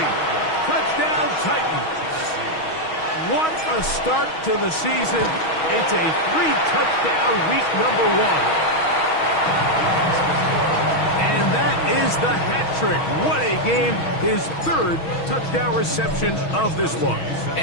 Touchdown Titans. What a start to the season. It's a 3-touchdown week number 1. And that is the hat trick. What a game. His 3rd touchdown reception of this one.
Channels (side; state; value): right; late; 6.3 ms